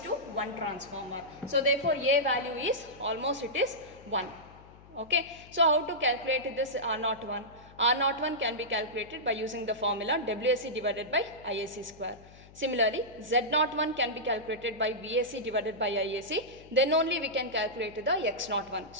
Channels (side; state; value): left; noise; hum, 22 dB below the sound